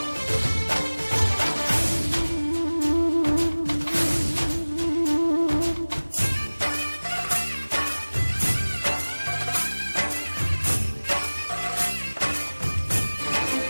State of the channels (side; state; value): both; inverted; correlation -1.00